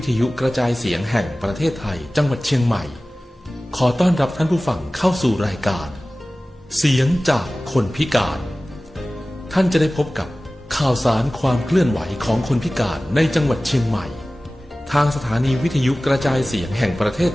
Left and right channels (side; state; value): both; normal; correlation 0.97